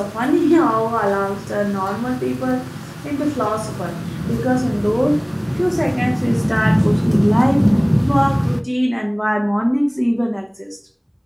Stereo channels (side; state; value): both; identical; correlation 1.00